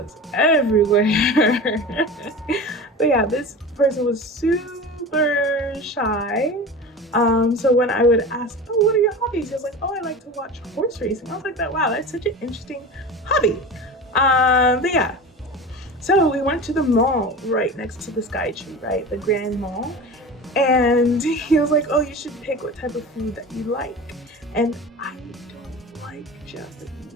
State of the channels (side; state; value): both; normal; correlation 0.31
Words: everywhere. But yeah, this person was super shy. So when I would ask, oh, what are your hobbies? He was like, oh, I like to watch horse racing. I was like, wow, that's such an interesting hobby. But yeah, so we went to the mall right next to the Sky Tree, right? The Grand Mall. And he was like, oh, you should pick what type of food that you like. And I don't like